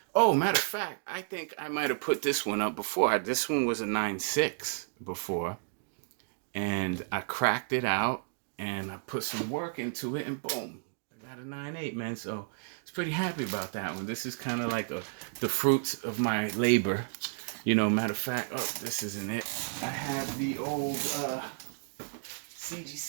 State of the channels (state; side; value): silent; left; digital silence